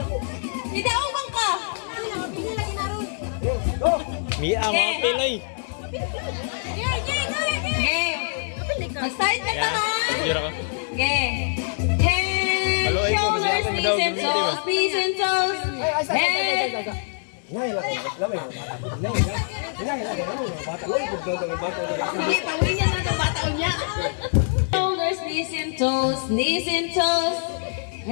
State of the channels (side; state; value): right; silent; digital silence